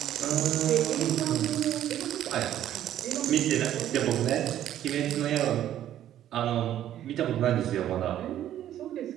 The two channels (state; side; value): quieter; left; 11.7 dB